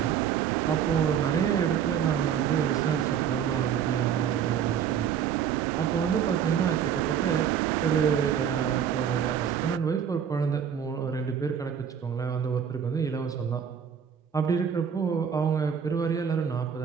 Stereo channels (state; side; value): quieter; left; 8.2 dB